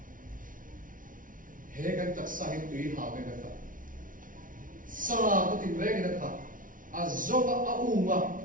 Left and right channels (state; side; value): late; left; 0.39 ms